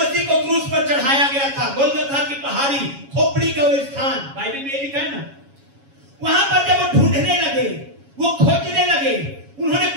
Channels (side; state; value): left; late; 7.2 ms